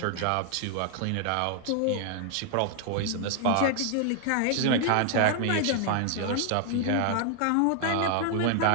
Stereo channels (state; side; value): different; both; correlation 0.00